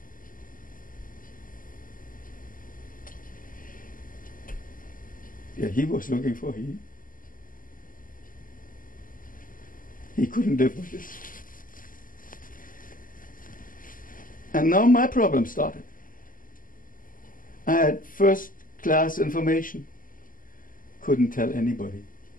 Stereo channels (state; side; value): late; right; 0.40 ms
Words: Yeah, he was looking for he couldn't live with this. And now my problem started. I had first class information, couldn't tell anybody,